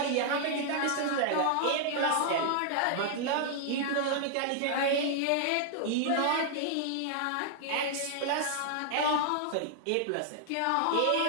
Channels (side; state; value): both; different; correlation -0.01